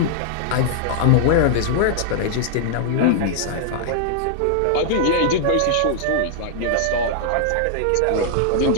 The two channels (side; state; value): both; different; correlation -0.01